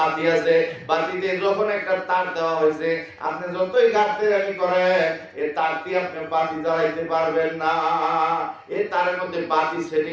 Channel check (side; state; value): both; identical; correlation 1.00